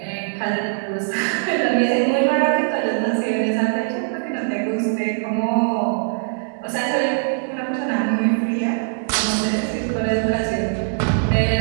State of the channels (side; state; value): left; silent; digital silence